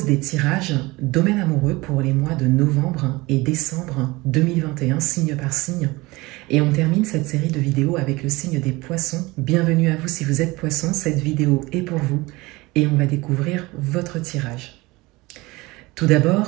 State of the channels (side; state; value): left; quieter; 22.0 dB